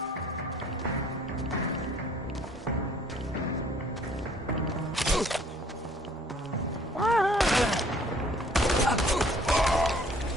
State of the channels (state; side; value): normal; both; correlation 0.57